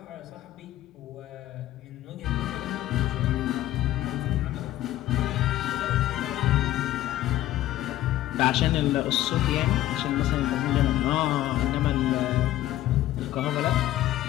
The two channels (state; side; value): quieter; right; 14.3 dB